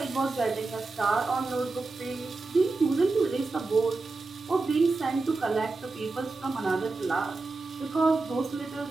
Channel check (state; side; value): quieter; left; 3.6 dB